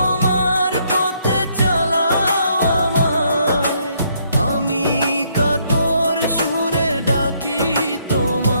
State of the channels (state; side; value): inverted; both; correlation -0.70